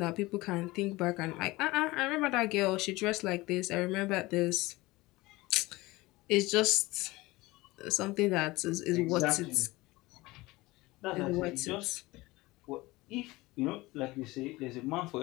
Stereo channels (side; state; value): right; quieter; 20.7 dB